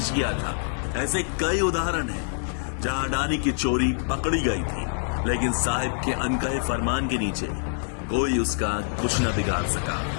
किया था। ऐसे कई उदाहरण हैं जहां अडानी की चोरी पकड़ी गई थी, लेकिन साहिब के अनकहे फरमान के नीचे कोई उसका कुछ न बिगाड़ सका।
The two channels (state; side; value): silent; right; digital silence